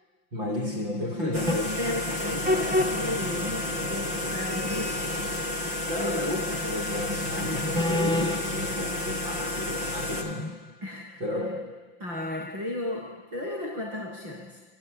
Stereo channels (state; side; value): late; left; 5.8 ms